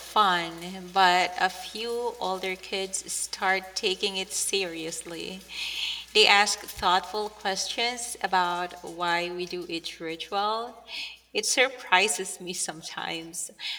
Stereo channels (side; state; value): both; identical; correlation 1.00